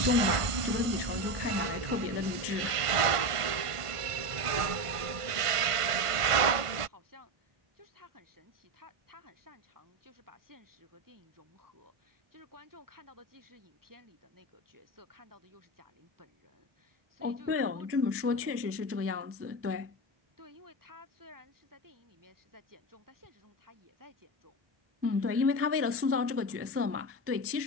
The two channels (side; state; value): left; late; 1.5 ms